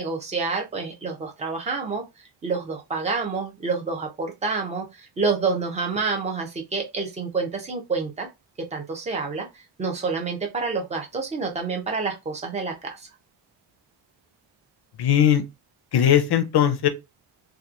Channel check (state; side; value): normal; both; correlation 0.07